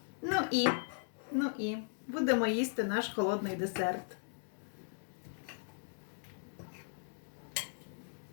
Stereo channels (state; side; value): silent; right; digital silence